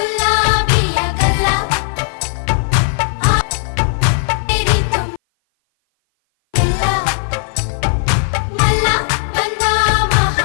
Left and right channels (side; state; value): right; silent; 58 dB below the other